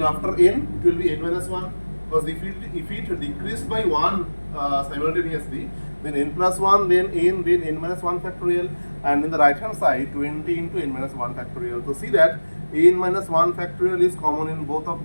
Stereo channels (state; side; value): inverted; both; correlation -1.00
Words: after n it will be n minus 1. Because if it decreased by 1 simultaneously, then n plus 1, then n minus 1 factorial, and in the right hand side 20 into n minus 1 factorial. So see that n minus 1 factorial is common in both